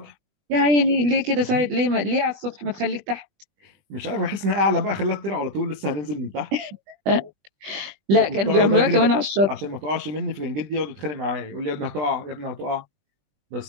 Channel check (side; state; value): left; late; 20 ms